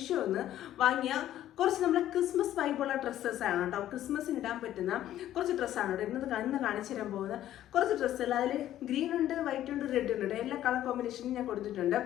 നിന്ന് വാങ്ങിയ കുറച്ച് നമ്മളെ ക്രിസ്മസ് വൈബുള്ള ഡ്രസ്സസ് ആണ് കേട്ടോ. ക്രിസ്മസിന് ഇടാൻ പറ്റുന്ന കുറച്ച് ഡ്രസ്സാണ് കേട്ടോ ഇന്ന് കാണിച്ചു തരാൻ പോകുന്നത്. കുറച്ച് ഡ്രസ്സുകൾ അതിൽ ഗ്രീൻ ഉണ്ട്, വൈറ്റ് ഉണ്ട്, റെഡ് ഉണ്ട്, എല്ലാ കളർ കോമ്പിനേഷനും ഞാൻ കൊടുത്തിട്ടുണ്ട്.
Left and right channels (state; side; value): quieter; right; 12.5 dB